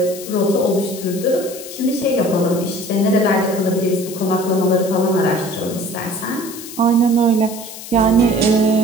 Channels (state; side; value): noise; left; hiss, 13 dB below the sound